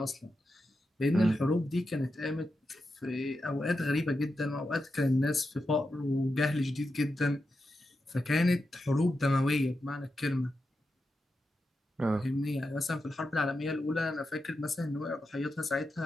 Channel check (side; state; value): both; normal; correlation 0.88